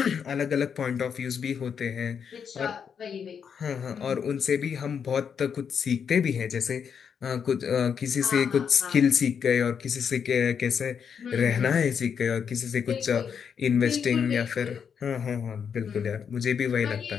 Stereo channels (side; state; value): right; quieter; 7.1 dB